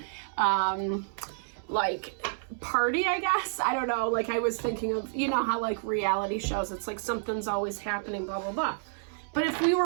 party, I guess. I don't know. I was thinking of, how reality shows, it's like something's always happening, blah, blah, blah. But if we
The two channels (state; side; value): silent; left; 58 dB below the other